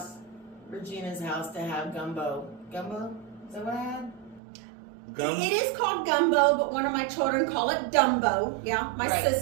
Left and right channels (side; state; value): left; drops out; at 4.4 s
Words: Regina's house, to have gumbo. Gumbo? Is that what I had? It is called gumbo, but one of my children call it Dumbo. Yeah, my